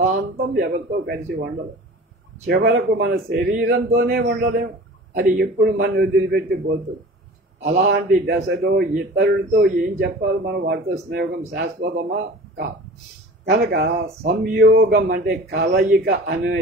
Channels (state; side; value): normal; both; correlation 0.40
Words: ఎవరితో కలిసి ఉండదు. చివరకు మన శరీరంతోనే ఉండలేము. అది ఎప్పుడు మనం వదిలిపెట్టి పోతుంది. అలాంటి దశలో ఇతరులతో ఏం చెప్పాలి? మనం వాటితో స్నేహం శాశ్వతమా కనుక సంయోగం అంటే కలయిక